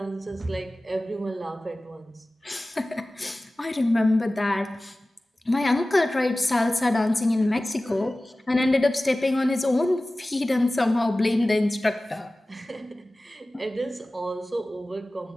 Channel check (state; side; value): normal; both; correlation 0.97